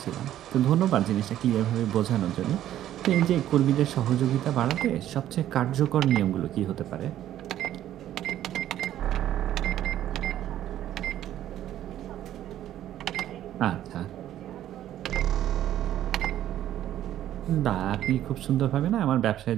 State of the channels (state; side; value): quieter; left; 12.2 dB